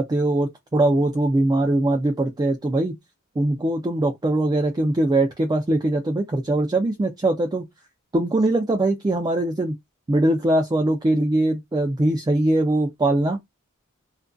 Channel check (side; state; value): both; normal; correlation 0.82